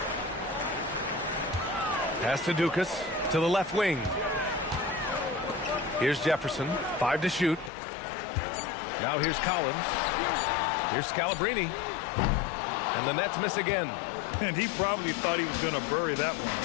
Pass to Dukas to the left wing. Here's Jefferson. 5 to shoot. Now here's Collins. Here's Scalabrine. And the Nets miss again. And he probably thought he was going to bury that one.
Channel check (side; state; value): right; drops out; at 7.7 s